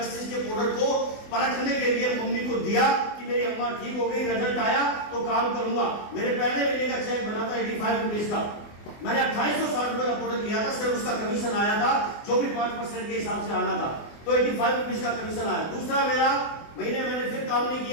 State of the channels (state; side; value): late; right; 24 ms